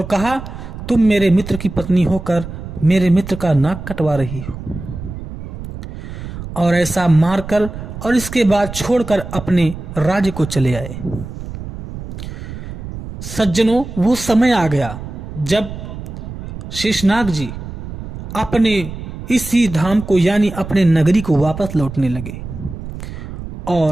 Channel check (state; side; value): noise; right; rumble, 10 dB below the sound